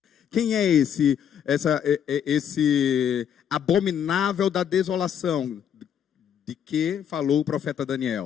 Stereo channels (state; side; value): quieter; right; 8.8 dB